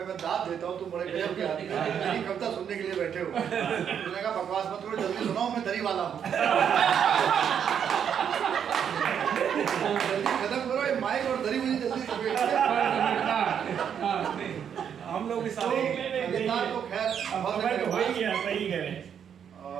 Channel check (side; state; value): left; quieter; 8.2 dB